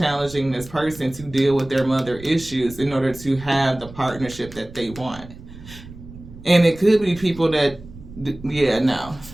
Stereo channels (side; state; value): right; noise; rumble, 17 dB below the sound